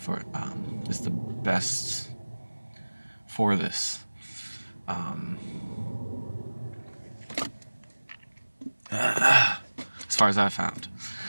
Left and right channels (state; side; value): inverted; both; correlation -1.00